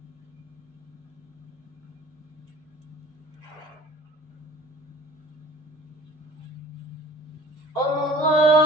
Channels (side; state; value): both; normal; correlation 0.46